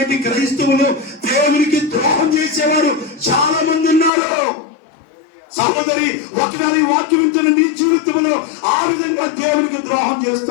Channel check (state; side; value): drops out; right; at 4.1 s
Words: క్రైస్తవులు దేవునికి ద్రోహం చేసేవారు చాలా మంది ఉన్నారు. సహోదరి, ఒకసారి వాక్యం వింటున్న నీ జీవితంలో ఆ విధంగా దేవునికి ద్రోహం